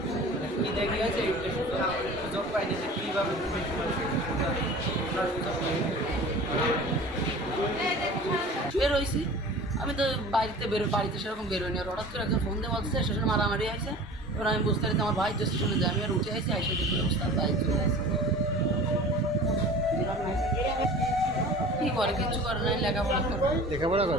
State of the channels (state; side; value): normal; both; correlation 0.40